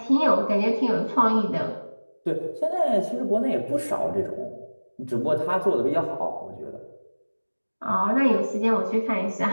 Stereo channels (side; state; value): both; inverted; correlation -1.00